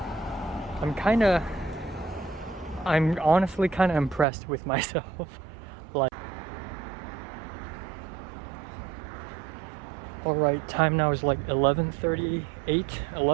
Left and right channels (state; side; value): drops out; left; at 4.2 s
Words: I'm honestly kind of impressed with myself. Like, alright, time now is like 11:38,